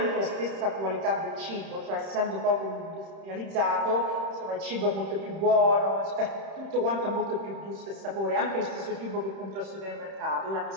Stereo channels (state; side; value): late; left; 31 ms